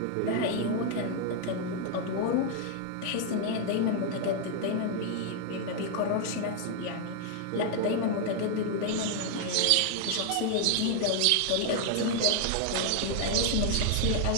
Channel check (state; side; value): different; both; correlation 0.00